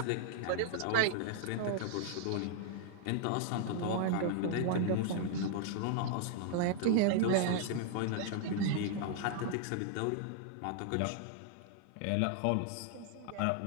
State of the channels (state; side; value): different; both; correlation -0.01